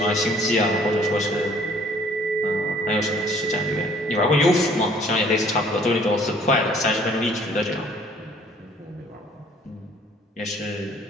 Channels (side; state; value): both; normal; correlation 0.57